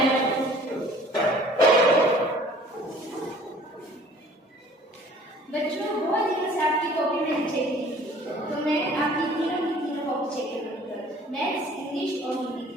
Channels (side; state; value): both; normal; correlation 0.51